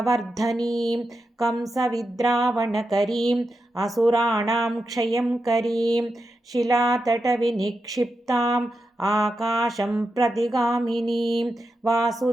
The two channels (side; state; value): both; normal; correlation 0.88